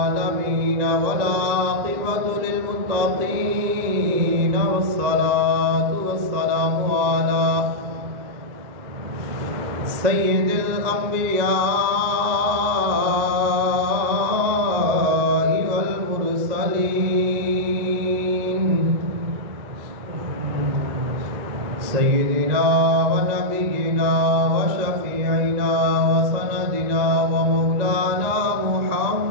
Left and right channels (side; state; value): left; late; 2.0 ms